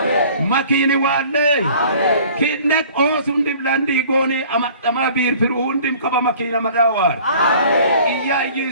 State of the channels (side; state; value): both; inverted; correlation -0.50